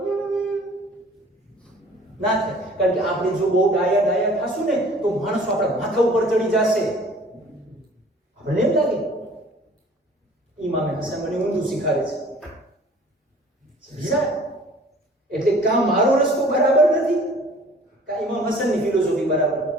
ના થાય. કારણ કે આપણે જો બહુ ડાયા થાશું ને તો માણસો આપણા માથા ઉપર ચડી જશે. આપણને એમ લાગે ઇમામે હસન મને ઊંધું શીખાડે છે, એટલે કા મારો રસ્તો બરાબર નથી, કા ઇમામ હસનની ફિલોસોફી બરાબર,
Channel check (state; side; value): normal; both; correlation 0.50